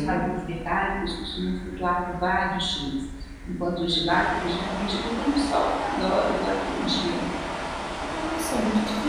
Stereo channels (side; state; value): both; identical; correlation 1.00